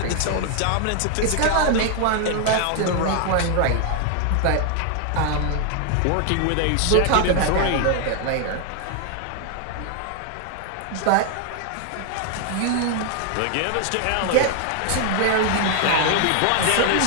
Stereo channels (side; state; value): both; different; correlation 0.00